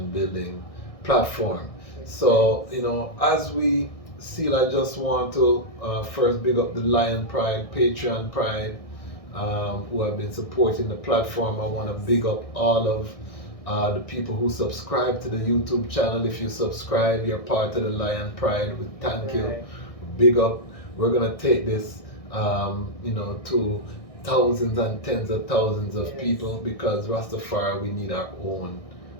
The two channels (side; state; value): right; late; 1.6 ms